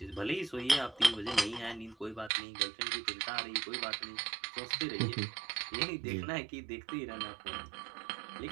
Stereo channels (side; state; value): left; drops out; at 2.3 s